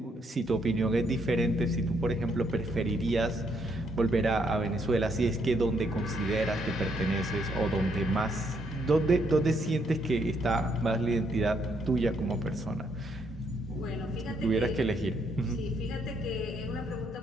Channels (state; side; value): normal; both; correlation 0.73